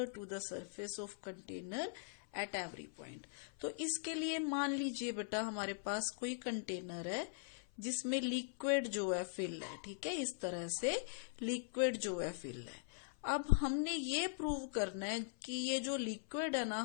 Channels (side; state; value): right; silent; 50 dB below the other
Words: to the surface of container at every point. तो इसके लिए मान लीजिए बेटा, हमारे पास कोई कंटेनर है जिसमें लिक्विड जो है फिल है। ठीक है, इस तरह से लिक्विड जो है फिल है। अब हमने ये प्रूव करना है कि ये जो लिक्विड है ना,